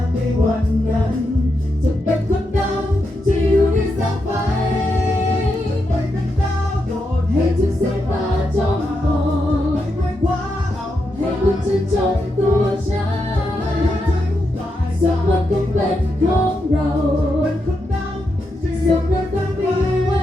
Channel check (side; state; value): both; normal; correlation 0.84